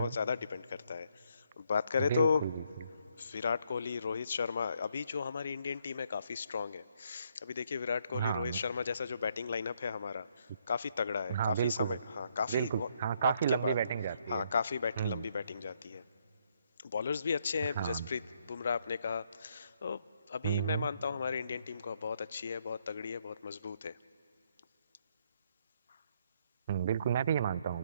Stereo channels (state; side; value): inverted; both; correlation -0.72